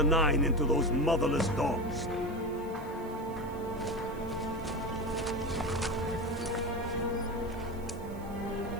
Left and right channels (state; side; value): noise; right; hiss, 24 dB below the sound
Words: Nine into those motherless dogs.